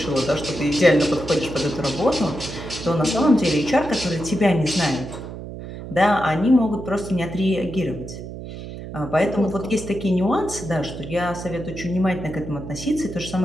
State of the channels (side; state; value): right; noise; hum, 10 dB below the sound